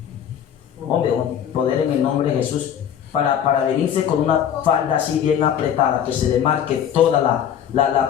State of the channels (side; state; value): right; quieter; 9.3 dB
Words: Hombre, poder en el nombre de Jesús, para venirse con una falda así bien apretada, que se le marque toda la